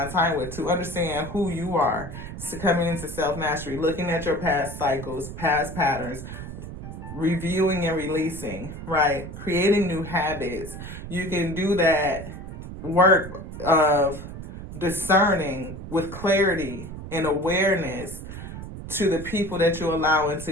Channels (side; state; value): right; noise; rumble, 10 dB below the sound